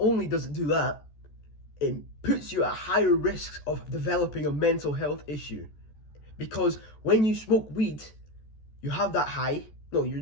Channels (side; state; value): right; late; 14 ms